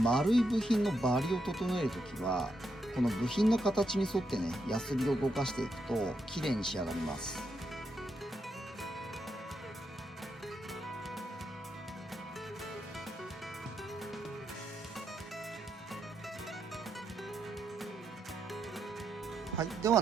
い部品のバリを整えるときはこの部品の形に沿ってねヤスリを動かしていくと綺麗に仕上がります。はい、では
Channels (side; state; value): both; normal; correlation 0.82